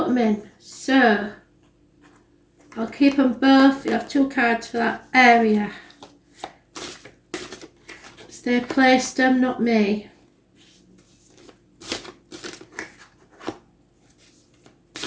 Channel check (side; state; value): both; identical; correlation 1.00